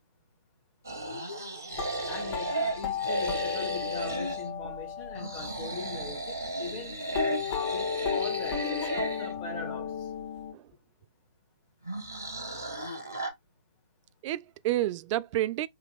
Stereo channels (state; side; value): inverted; both; correlation -0.41